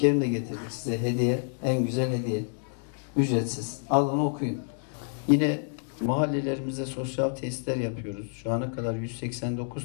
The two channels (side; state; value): right; silent; 59 dB below the other